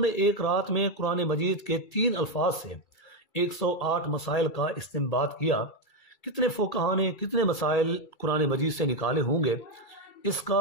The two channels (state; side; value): late; right; 2.3 ms